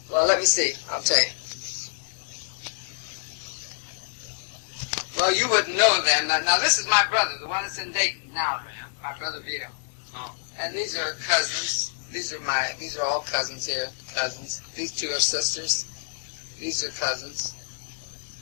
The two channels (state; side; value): silent; right; 60 dB below the other